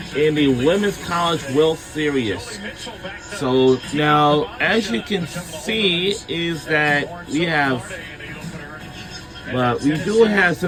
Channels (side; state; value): both; identical; correlation 1.00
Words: in the Women's College World Series. So now, as you can see, is that we do have